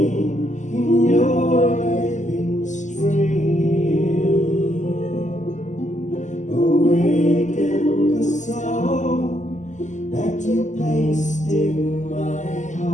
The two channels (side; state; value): right; late; 0.35 ms